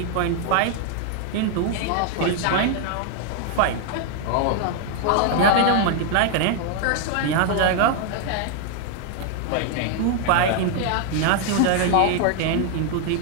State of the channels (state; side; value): different; both; correlation 0.00